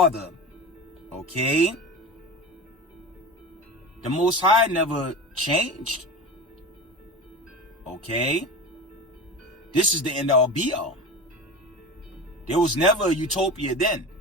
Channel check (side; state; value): both; normal; correlation 0.29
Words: Okay. The Most High never changed. Okay. This is the end all be all. There was never a utopia then.